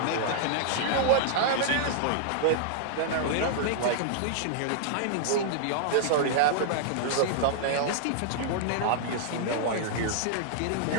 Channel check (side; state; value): both; different; correlation -0.01